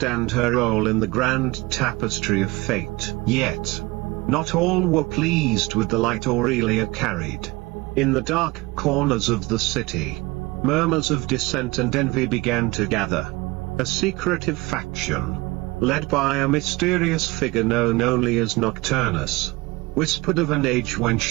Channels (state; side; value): quieter; left; 22.5 dB